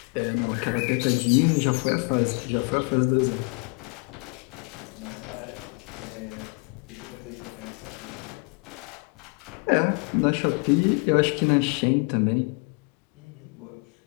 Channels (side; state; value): right; quieter; 34.4 dB